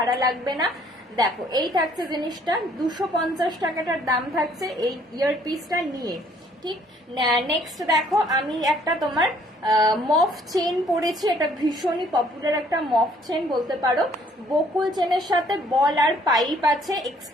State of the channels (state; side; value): normal; both; correlation 0.61